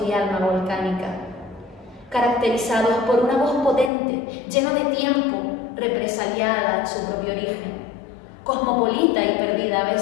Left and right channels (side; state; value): right; drops out; at 3.9 s